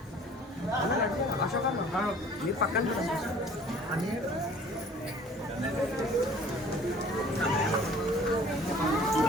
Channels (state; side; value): normal; both; correlation 0.50